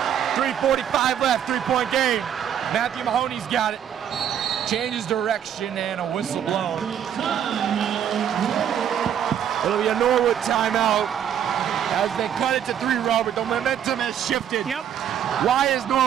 3:45 left, 3-point game. Matthew Mahoney's got it. Changes direction and a whistle blown. It'll be a Norwood timeout as they cut it to 3, Robert. The momentum has shifted. Yep. Why is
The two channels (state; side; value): quieter; left; 9.3 dB